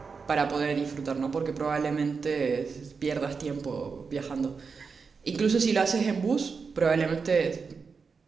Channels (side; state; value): left; quieter; 5.2 dB